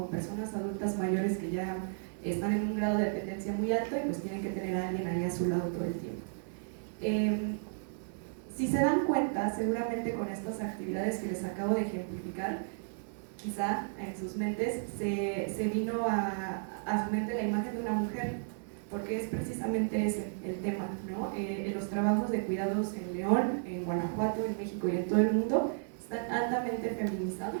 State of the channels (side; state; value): left; silent; digital silence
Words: personas adultas mayores que ya están en un grado de dependencia muy alto y pues tienen que tener a alguien ahí a su lado todo el tiempo. Si se dan cuenta, seguramente con estas actividades que les acabo de ejemplificar, quizá en sus mentes se vino a su mente la imagen de una mujer, porque es precisamente ese el tema, ¿no? Los trabajos de cuidados en León, en Guanajuato, en México y en todo el mundo están altamente